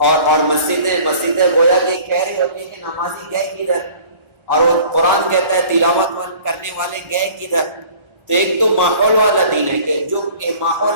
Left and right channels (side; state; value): left; late; 1.4 ms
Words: مسجدیں گویا کہ کہہ رہی ہوتی ہیں کہ نمازی گئے کدھر، اور وہ قرآن کہتا ہے تلاوت کرنے والے گئے کدھر۔ تو ایک تو ماحول والا دین ہے کہ جو